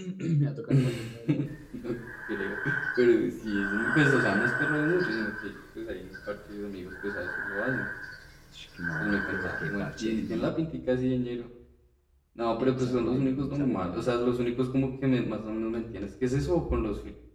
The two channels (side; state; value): both; identical; correlation 1.00